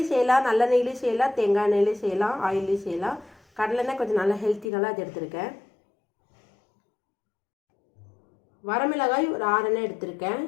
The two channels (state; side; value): drops out; right; at 4.7 s